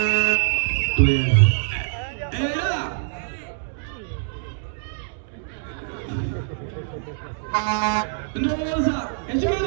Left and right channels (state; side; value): silent; left; digital silence